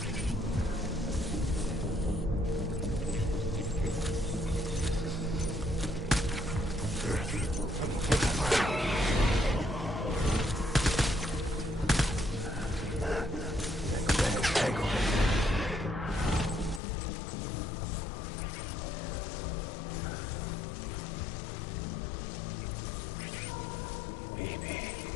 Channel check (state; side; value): drops out; right; at 16.8 s